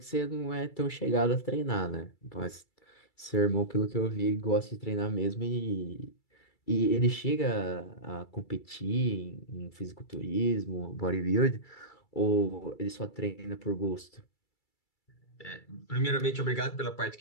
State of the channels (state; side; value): late; right; 2.3 ms